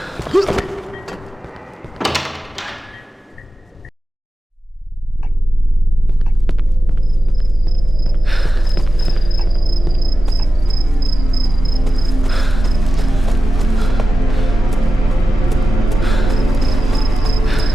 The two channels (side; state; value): both; normal; correlation 0.94